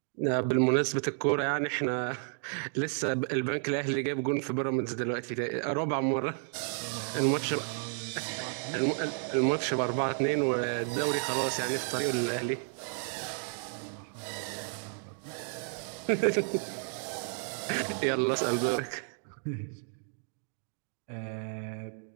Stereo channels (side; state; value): left; silent; 56 dB below the other